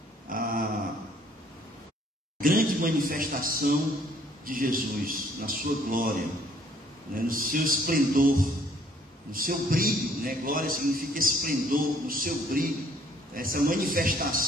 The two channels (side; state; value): both; normal; correlation 0.61